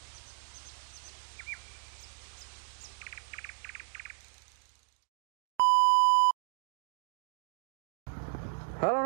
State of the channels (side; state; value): left; silent; digital silence